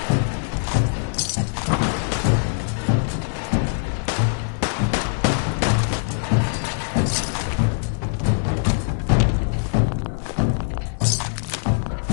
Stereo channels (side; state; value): right; silent; 64 dB below the other